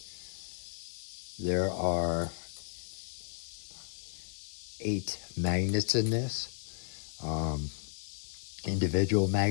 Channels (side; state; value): right; silent; digital silence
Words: There are 8 magnets in this. Individual